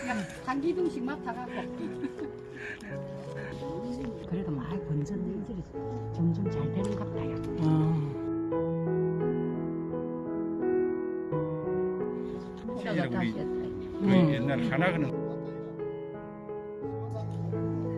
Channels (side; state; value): both; identical; correlation 1.00